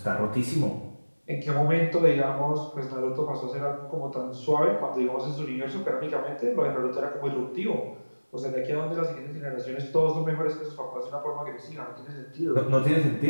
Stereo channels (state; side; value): inverted; both; correlation -1.00